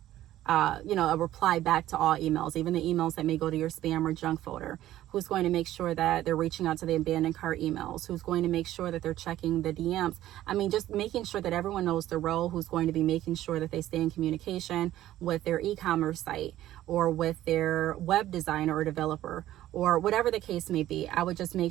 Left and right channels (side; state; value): left; quieter; 13.8 dB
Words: a reply back to all emails, even the emails that may go to your spam or junk folder. who's going to make sure that they're reaching out to the abandoned cart emails, who's going to make sure that they're checking the DMs. I mean, just making sure that everyone knows the role, who's going to be making sure that they stay in communication with their e-commerce site or with their web designer or developer or whatever the case may be. I would just make